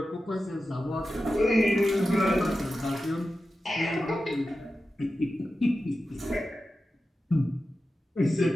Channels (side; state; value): both; normal; correlation 0.92